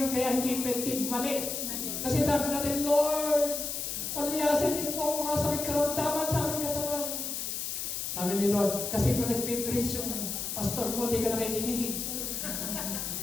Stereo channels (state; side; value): noise; left; hiss, 3 dB below the sound